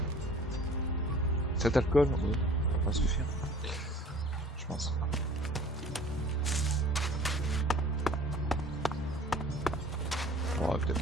Cet alcool, oui, ça va pas suffire. Je pense. On va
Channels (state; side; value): normal; both; correlation 0.48